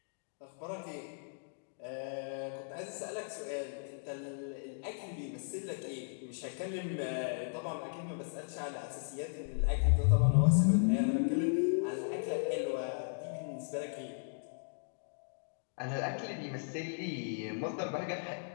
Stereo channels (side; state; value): right; silent; digital silence